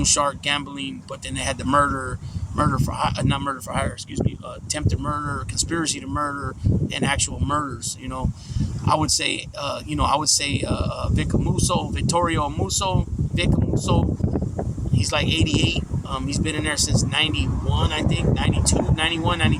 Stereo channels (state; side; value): identical; both; correlation 1.00